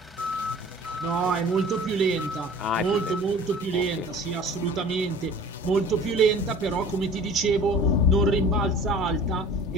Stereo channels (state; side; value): normal; both; correlation 0.44